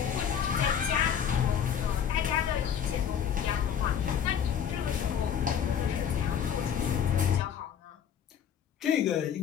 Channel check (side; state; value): right; quieter; 8.5 dB